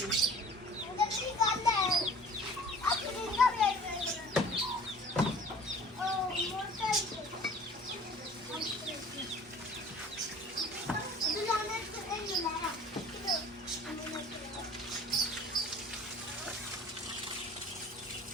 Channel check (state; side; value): normal; both; correlation 0.47